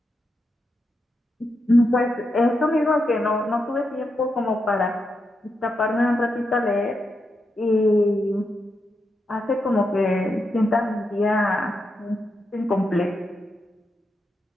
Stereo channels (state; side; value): normal; both; correlation 0.85